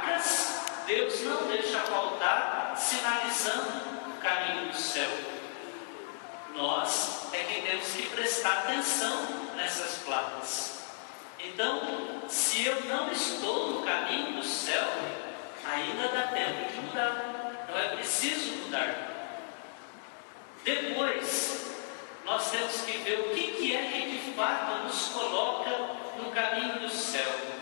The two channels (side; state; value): right; silent; digital silence